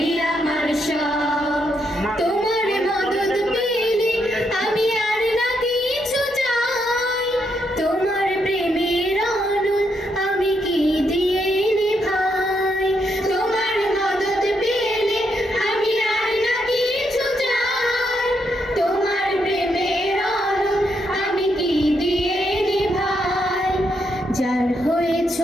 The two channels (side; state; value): both; normal; correlation 0.78